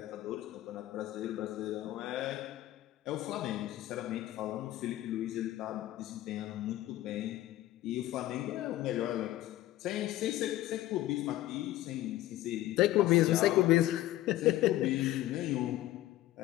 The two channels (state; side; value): quieter; right; 15.1 dB